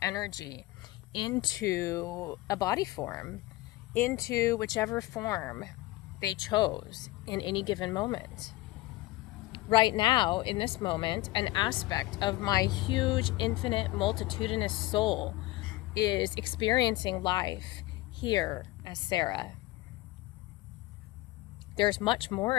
energy, into a body form, into whichever form they chose in any given moment. Right now, in this moment, an aspect of my huge, infinite, multitudinous soul is experiencing life here as Sarah. There's much more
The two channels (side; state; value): right; quieter; 18.7 dB